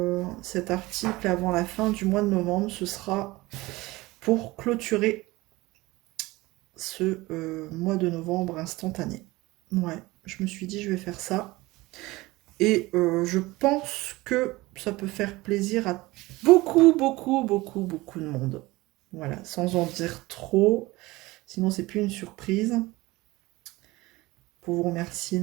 cet article avant la fin du mois de novembre, ce sera pour clôturer ce mois de novembre instantané. Ouais, je me suis dit, je vais faire ça. Et je pense que ça peut faire plaisir à beaucoup de monde. Voilà, sans en dire trop. Sinon, c'est plus une surprise. Pour vous remercier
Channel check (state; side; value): quieter; left; 20.4 dB